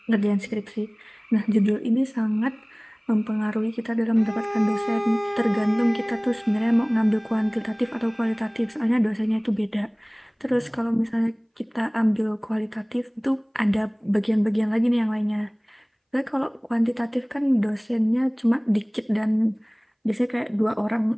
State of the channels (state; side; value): identical; both; correlation 1.00